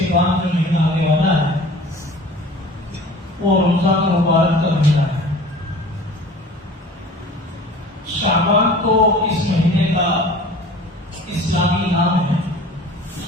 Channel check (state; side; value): normal; both; correlation 0.44